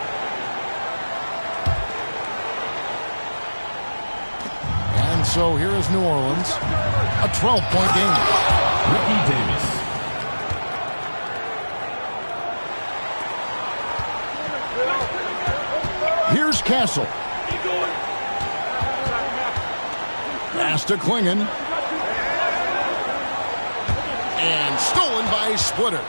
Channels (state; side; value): inverted; both; correlation -1.00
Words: And so here is New Orleans. A 12-point game. Ricky Davis. Here's Castle. Pass to Klingon. And stolen by Splitter.